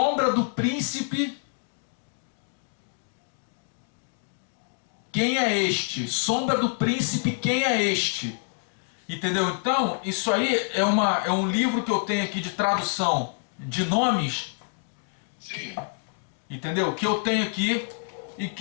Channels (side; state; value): right; silent; 60 dB below the other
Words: do príncipe. Quem é este? Sombra do príncipe, quem é este? Entendeu? Então, isso aí é um livro que eu tenho aqui de tradução de nomes. Sim. Entendeu? Que eu tenho aqui e